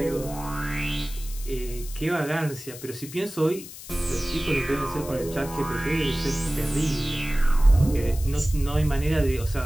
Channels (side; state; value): left; noise; hiss, 14 dB below the sound